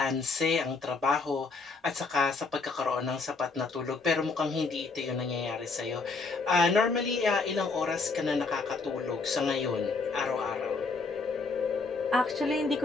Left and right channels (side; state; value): right; quieter; 4.1 dB